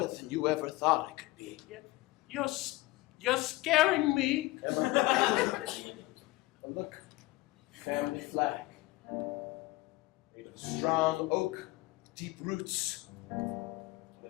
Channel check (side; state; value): right; quieter; 20.0 dB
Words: than you ever thought I could be. You're scaring me. Emma, look, family flag. Made of strong oak, deep roots.